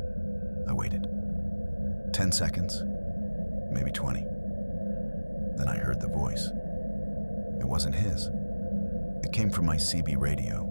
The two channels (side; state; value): both; inverted; correlation -1.00